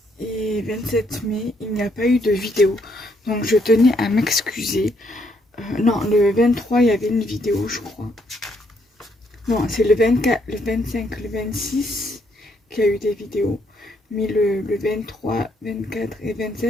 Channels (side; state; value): both; normal; correlation 0.72